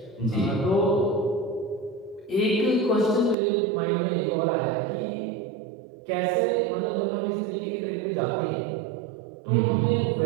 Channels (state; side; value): drops out; left; at 3.4 s